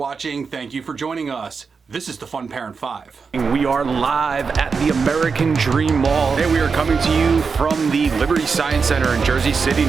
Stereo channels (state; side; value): quieter; left; 5.2 dB